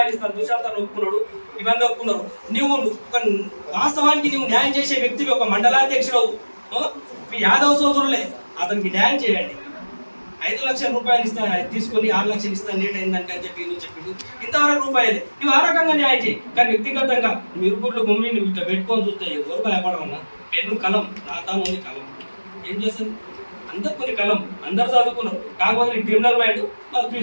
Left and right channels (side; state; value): both; inverted; correlation -1.00